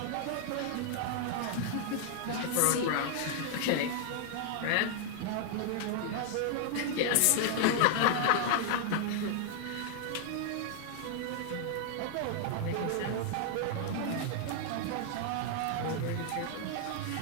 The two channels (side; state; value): both; different; correlation 0.00